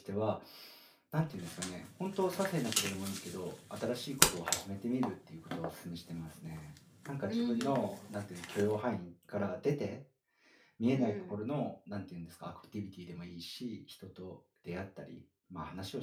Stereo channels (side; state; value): both; identical; correlation 1.00